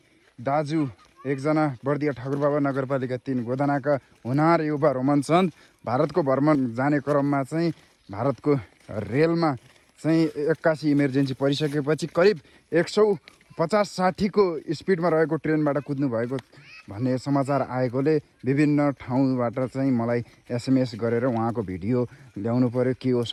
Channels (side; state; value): both; identical; correlation 1.00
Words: दाजु एकजना बर्दिया ठाकुरबाबा नगरपालिका 3 गोदानाका हुनार युवा रोमन चन्द भारतको भ्रमण जाने क्रममा चाहिँ भारतको रेलमा चाहिँ 81 इमर्जेन्सी परिसकेपछि करिब 150-60 को स्पिडमा रहेको ट्रेनबाट कुद्नु भएको भन्ने समाचार आएकोले विभिन्न ठाउँबाट चाहिँ मलाई एसएमएस गरेर उहाँको भिडियो ल्याउनु पर्यो, के हो